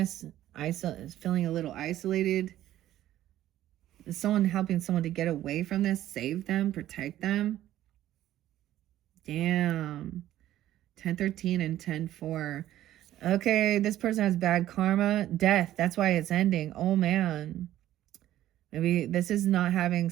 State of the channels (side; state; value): left; quieter; 13.3 dB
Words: Feeling a little isolated. Is someone helping someone to get away from this, save them, protect them? Damn. 10-13 and 10-4. Okay, this person has bad karma. Death. That's why it's ending. Oh, man. Maybe this is not having